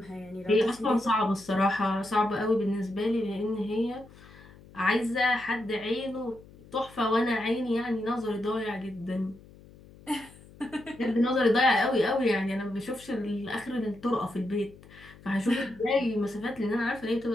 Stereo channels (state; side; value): noise; left; hum, 22 dB below the sound